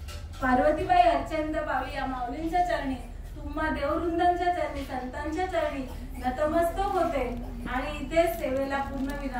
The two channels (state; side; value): identical; both; correlation 1.00